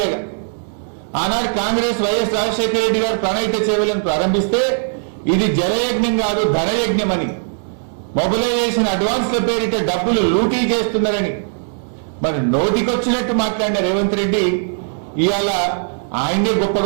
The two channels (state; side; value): silent; left; digital silence